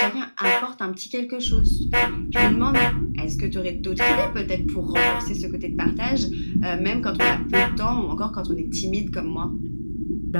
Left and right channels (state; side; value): inverted; both; correlation -1.00